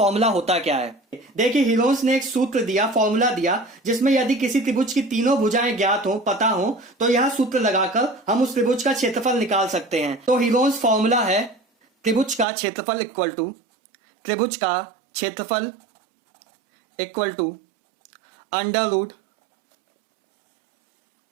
होता क्या है। देखिए हीरोन्स ने एक सूत्र दिया, फॉर्मूला दिया, जिसमें यदि किसी त्रिभुज की तीनों भुजाएं ज्ञात हो, पता हो, तो यह सूत्र लगाकर हम उस त्रिभुज का क्षेत्रफल निकाल सकते हैं। तो हीरोन्स फॉर्मूला है त्रिभुज का क्षेत्रफल equal to under root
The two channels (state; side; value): drops out; left; at 12.5 s